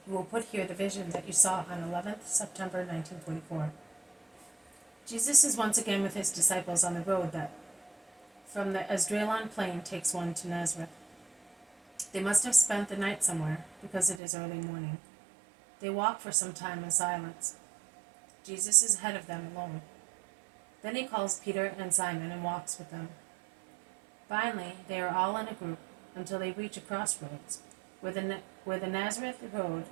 "You will put here the vision that you saw on 11th September 1944. Jesus is once again with his disciples on the road that from the Esdraelon plain takes one to Nazareth. They must have spent the night somewhere, because it is early morning. They walk for some time in silence. Jesus is ahead of them alone. Then he calls Peter and Simon and walks with them. Finally, they are all in a group until they reach a crossroads, where the Nazareth road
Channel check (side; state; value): left; drops out; at 14.2 s